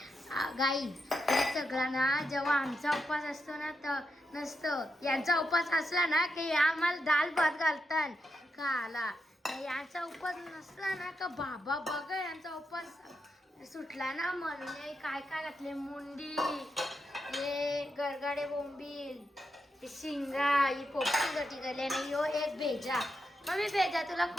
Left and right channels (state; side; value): normal; both; correlation 0.85